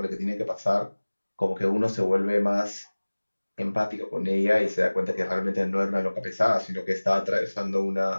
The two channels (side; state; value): both; inverted; correlation -1.00